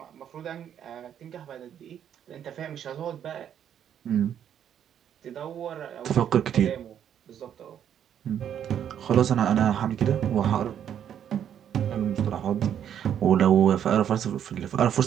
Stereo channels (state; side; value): quieter; left; 9.4 dB